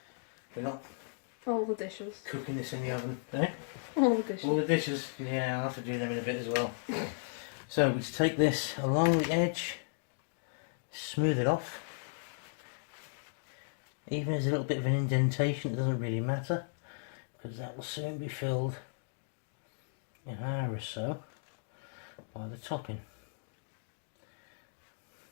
We're not all the dishes cooking this in the oven, eh? All the dishes. All the dishes, yeah, I'll have to do them in a bit as well. So we just take this along the edge, smooth it off. Even as a little bit of an indentation, it doesn't really matter, because that will soon be filled in an hour or so by the topping.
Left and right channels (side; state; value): right; silent; digital silence